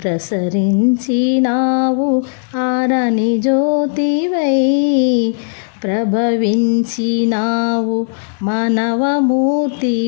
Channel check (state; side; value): silent; right; digital silence